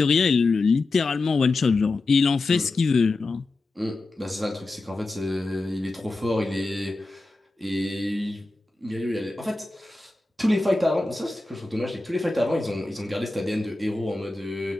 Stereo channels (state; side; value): quieter; right; 3.2 dB